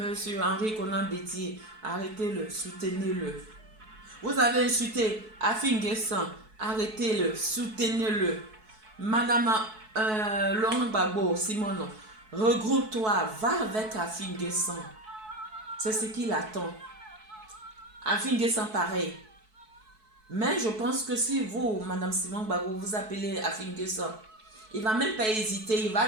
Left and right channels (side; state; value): left; late; 4.6 ms